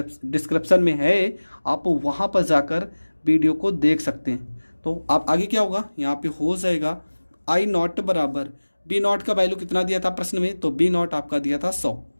में है, आप वहाँ पर जाकर वीडियो को देख सकते हैं। तो आप आगे क्या होगा, यहाँ पे हो जाएगा आई नॉट बराबर बी नॉट का वैल्यू कितना दिया था प्रश्न में, तो बी नॉट आपका दिया था 100।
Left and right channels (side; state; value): both; inverted; correlation -1.00